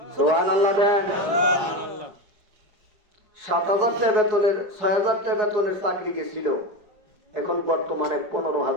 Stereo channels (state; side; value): late; left; 4.7 ms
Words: সুবহানাল্লাহ দেন। 7,000 টাকা বেতনের 6,000 টাকা বেতনের চাকরি গেছিল, এখন বর্তমানে